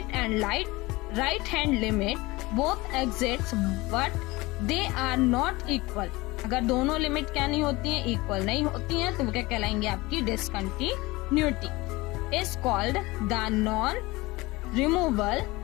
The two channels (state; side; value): quieter; right; 21.6 dB